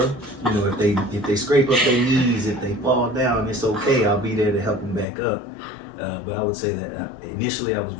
If they scrape up their knees, if they fall down, it's okay. I'll be there to help them back up. But I would say that initially I was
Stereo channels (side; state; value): right; drops out; at 5.1 s